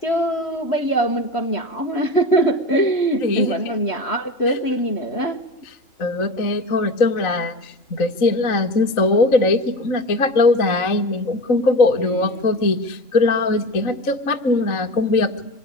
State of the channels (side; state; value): right; late; 3.9 ms